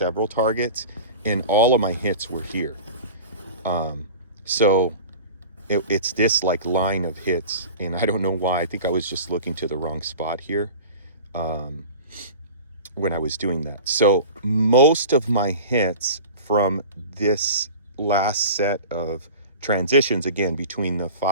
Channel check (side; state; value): both; inverted; correlation -0.36